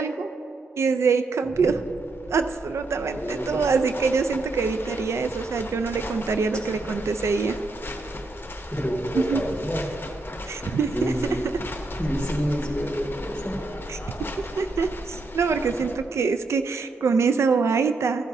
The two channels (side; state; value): left; quieter; 3.5 dB